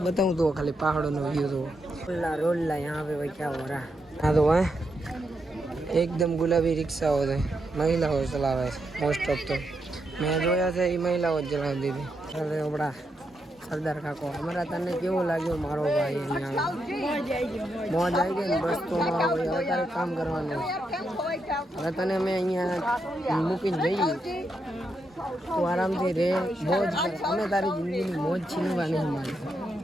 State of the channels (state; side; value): normal; both; correlation 0.82